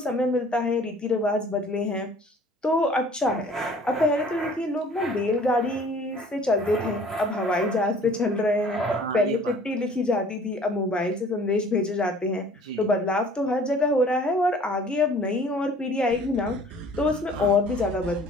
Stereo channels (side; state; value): both; normal; correlation 0.51